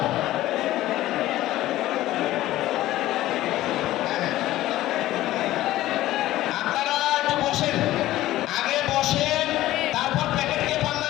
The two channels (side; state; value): right; quieter; 15.3 dB